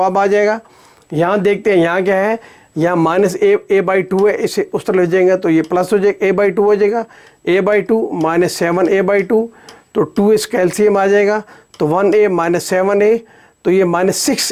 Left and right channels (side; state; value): both; identical; correlation 1.00